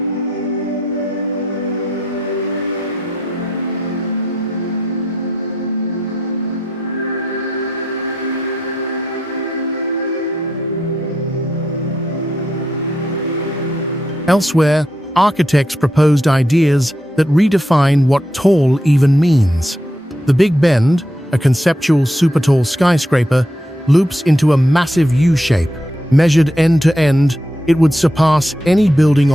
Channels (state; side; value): normal; both; correlation 0.79